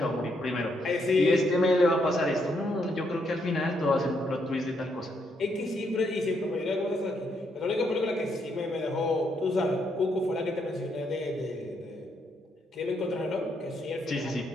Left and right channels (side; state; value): both; normal; correlation 0.76